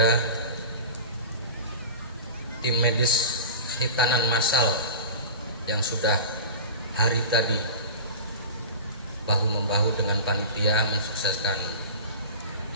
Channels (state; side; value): inverted; both; correlation -0.34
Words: tim medis hitanan massal yang sudah hari tadi bahu-membahu dengan panitia mensukseskan